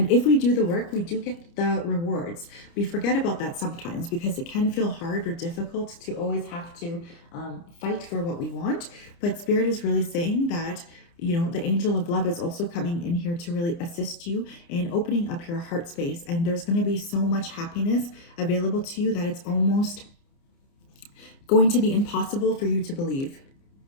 if we do the work, we do get the rewards. We forget about that sometimes because it can feel hard or difficult to always have to fight for what we want. But Spirit is really saying that, you know, the angel of love is also coming in here to really assist you in opening up your heart space. And there's going to be so much happiness available to you that it's almost going to be impossible for you to believe.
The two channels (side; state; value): right; late; 29 ms